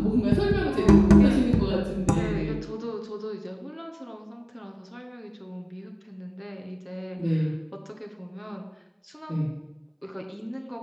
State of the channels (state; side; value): identical; both; correlation 1.00